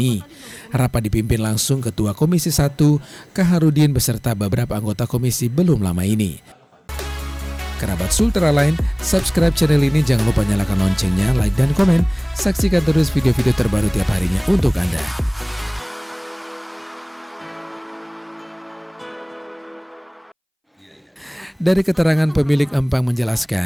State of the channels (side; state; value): both; identical; correlation 1.00